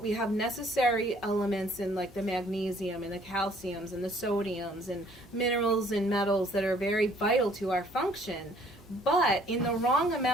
have necessary elements in like the magnesium and the calciums and the sodiums and minerals and metals that are very vital to our function. But in the wrong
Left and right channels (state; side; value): normal; both; correlation 0.60